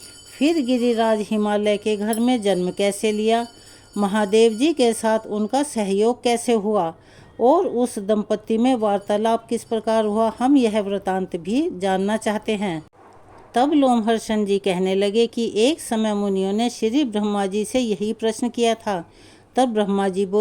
फिर गिरिराज हिमालय के घर में जन्म कैसे लिया? महादेव जी के साथ उनका सहयोग कैसे हुआ और उस दंपति में वार्तालाप किस प्रकार हुआ? हम यह वृतांत भी जानना चाहते हैं। तब लोमहर्षण जी कहने लगे कि एक समय मुनियों ने श्री ब्रह्मा जी से यही प्रश्न किया था। तब ब्रह्मा जी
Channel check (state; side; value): identical; both; correlation 1.00